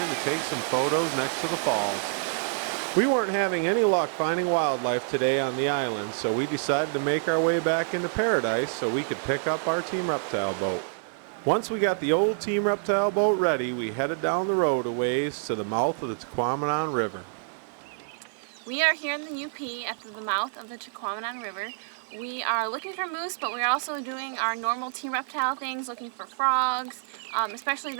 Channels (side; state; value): left; silent; digital silence